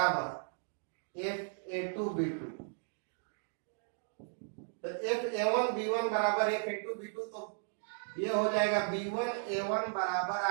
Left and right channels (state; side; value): silent; left; digital silence